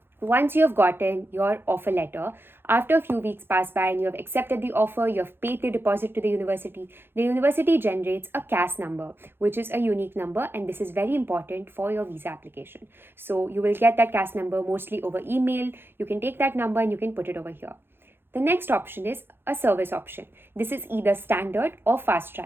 Once you have gotten your offer letter, after a few weeks pass by and you have accepted the offer, you have paid the deposit to the university generates a CAS number, which is a unique number, and this is very important for your visa application. So you will get that CAS number mostly over email. You can take that number and you can put it over here. The next option is a service option. This is either standard or fast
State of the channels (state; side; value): late; left; 0.10 ms